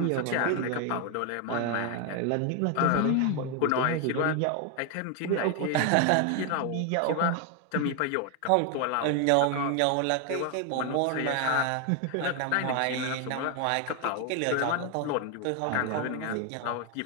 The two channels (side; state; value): both; different; correlation 0.01